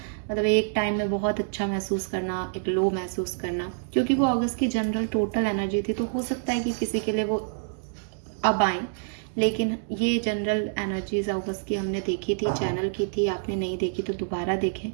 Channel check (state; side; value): silent; left; digital silence